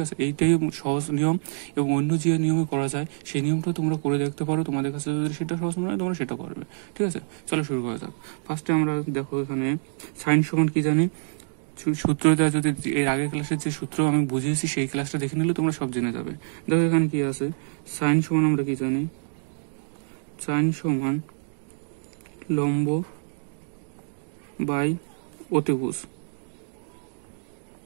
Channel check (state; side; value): silent; left; digital silence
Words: আছে, এইটাই সহজ নিয়ম এবং অন্য যে নিয়মে করা যায় সেই নিয়মটা তোমরা করে দেখতে পারো। তোমাদের কাছে যদি সেটা সহজ মনে হয় তোমরা সেটা করবে। ঠিক আছে, চলো শুরু করা যাক। ফার্স্টে আমরা দেখো এখানে সাইন সমান কি জানি, সূত্রটা যদি এর আগের ক্লাসের যে সূত্র আমি বুঝিয়েছি সেই ক্লাসটা দেখে নিলে তোমরা সব জেনে যাবে। দেখো এখানে কি আছে, সাইন সমান আমরা কি জানি, সাইন সমান লম্ব বাই অতিভুজ।